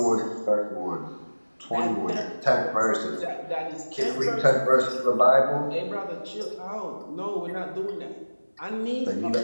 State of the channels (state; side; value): inverted; both; correlation -1.00